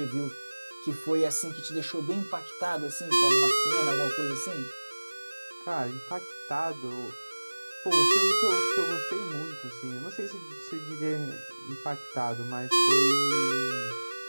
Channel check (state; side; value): inverted; both; correlation -1.00